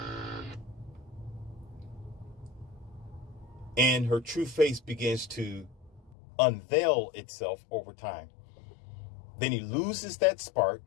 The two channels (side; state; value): right; drops out; at 6.2 s